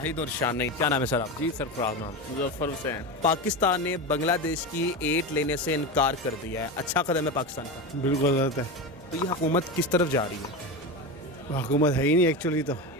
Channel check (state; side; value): normal; both; correlation 0.21